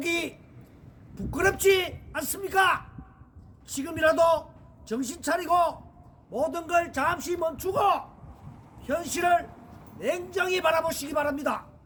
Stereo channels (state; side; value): identical; both; correlation 1.00